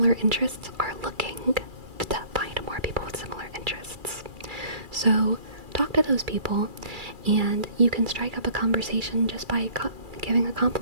interests are looking to find more people with similar interests. So talk to those people, and you can strike up a conversation just by giving a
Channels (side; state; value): left; late; 2.3 ms